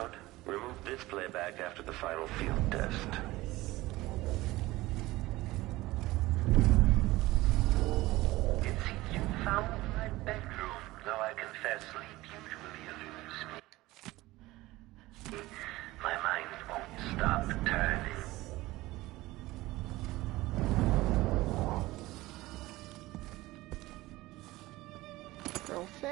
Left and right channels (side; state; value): left; quieter; 18.7 dB